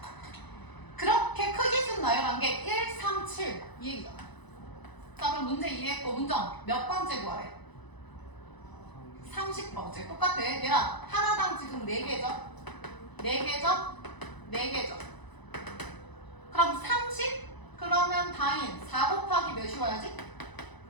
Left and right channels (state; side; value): late; right; 1.0 ms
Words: 그렇게 크기 순 나열한 게 1, 3, 7 이 얘기잖아. 자, 그럼 문제 이해했고 문정 몇 번째 구하래? 30번째. 똑같아. 얘랑 하나당 지금 4개죠? 4개죠? 4개죠? 그럼 30? 그러면 다인 4 곱하기 몇이 와야지?